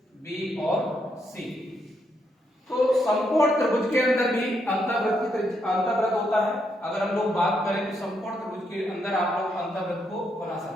बी और सी। तो समकोण त्रिभुज के अंदर भी अंतःवृत्त होता है। अगर हम लोग बात करें तो समकोण त्रिभुज के अंदर आप लोग अंतःवृत्त को बना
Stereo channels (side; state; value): both; normal; correlation 0.78